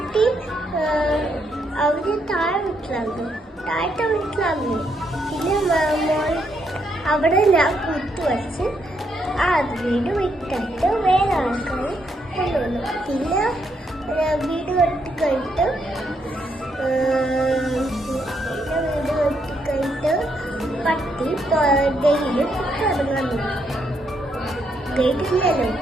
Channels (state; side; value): normal; both; correlation 0.76